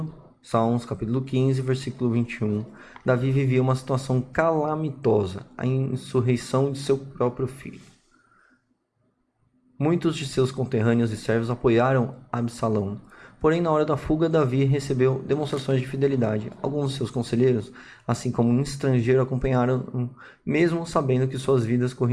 Salmos, capítulo 15, versículo 21. Davi vivia uma situação calamitosa, a insurreição de seu próprio filho. Muitos de seus conterrâneos e servos apoiaram Absalão. Porém, na hora da fuga, Davi recebeu demonstrações de fidelidade. Alguns de seus conselheiros, assim como um estrangeiro, acompanharam, mesmo sabendo que suas vidas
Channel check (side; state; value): both; identical; correlation 1.00